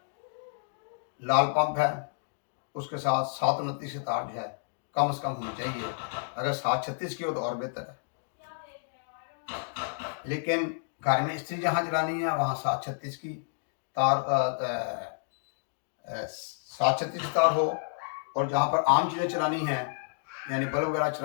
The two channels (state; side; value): silent; right; digital silence